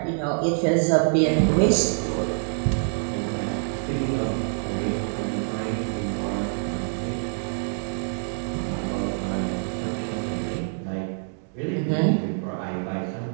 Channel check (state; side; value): silent; left; 61 dB below the other